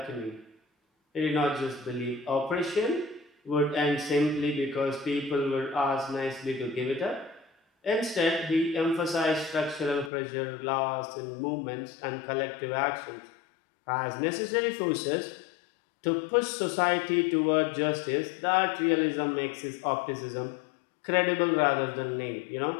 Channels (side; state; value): right; drops out; at 10.1 s